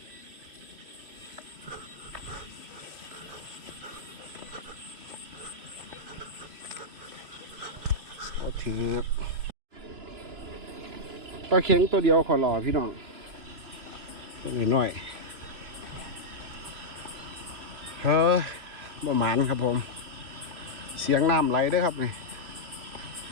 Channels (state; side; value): late; left; 2.9 ms